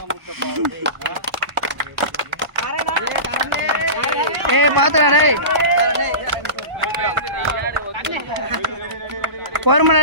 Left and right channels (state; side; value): late; left; 1.0 ms